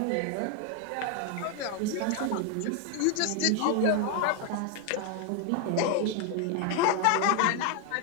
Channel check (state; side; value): different; both; correlation 0.01